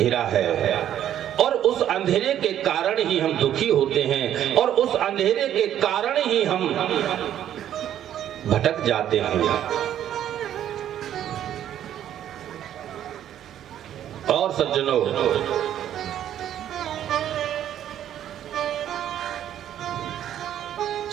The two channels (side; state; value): left; quieter; 10.9 dB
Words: है और उस अंधेरे के कारण ही हम दुखी होते हैं, और उस अंधेरे के कारण ही हम भटक जाते हैं। और सज्जनों,